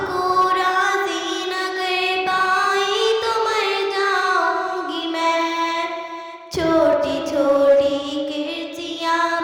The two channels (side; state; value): both; identical; correlation 1.00